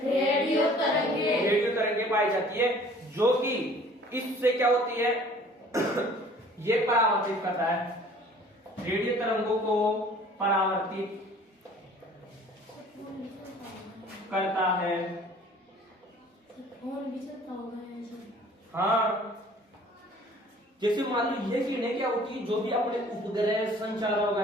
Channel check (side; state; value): both; normal; correlation 0.51